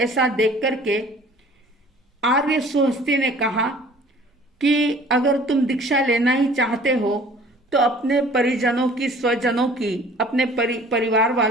देख करके आर्य सुहस्ती ने कहा कि अगर तुम दीक्षा लेना ही चाहते हो तो अपने परिजनों की, स्वजनों की, अपने परिवार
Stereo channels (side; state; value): both; normal; correlation 0.50